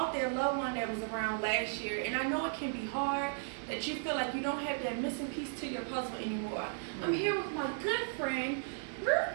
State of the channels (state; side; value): silent; left; digital silence